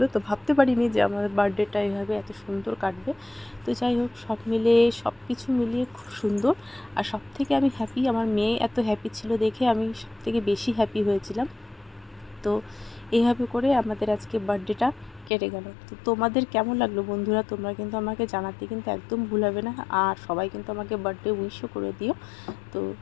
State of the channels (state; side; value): drops out; right; at 15.3 s